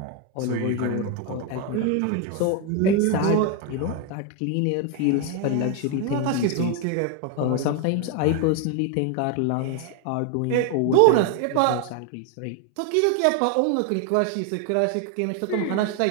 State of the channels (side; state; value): both; different; correlation 0.01